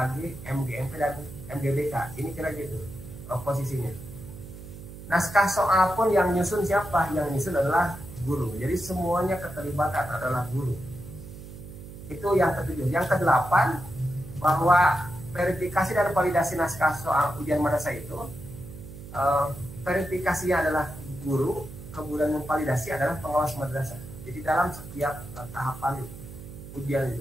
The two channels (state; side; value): noise; right; hum, 13 dB below the sound